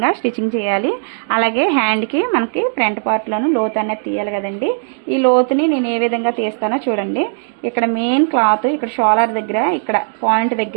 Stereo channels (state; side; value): silent; left; digital silence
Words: స్టిచ్చింగ్ చేయాలి, అలాగే హ్యాండ్కి మనకి ఫ్రంట్ పార్ట్లోను లోతు అనేది తీయాలి కదండి. ఈ లోతుని నేను ఏ విధంగా తీస్తానో చూడండి. ఇక్కడ మెయిన్ క్లాత్ ఇక్కడ షోలర్ దగ్గర ఇక్కడ పాయింట్